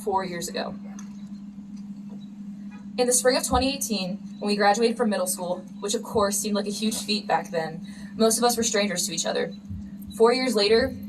years ago. In the spring of 2018, when we graduated from middle school, which of course seemed like a huge feat back then, most of us were strangers to each other. 4 years later,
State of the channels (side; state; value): both; identical; correlation 1.00